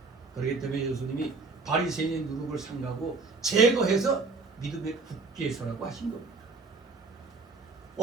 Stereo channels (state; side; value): quieter; left; 4.0 dB